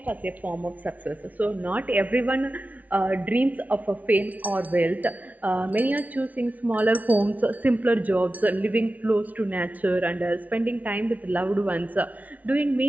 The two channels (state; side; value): late; left; 0.072 ms